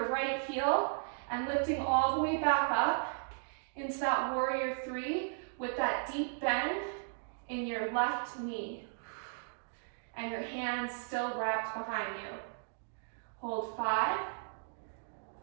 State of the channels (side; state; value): left; silent; digital silence